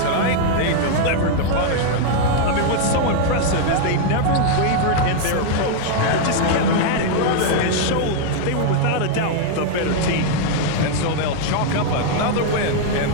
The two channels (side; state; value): both; different; correlation 0.00